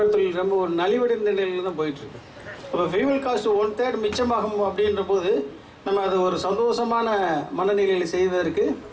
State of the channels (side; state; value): both; identical; correlation 1.00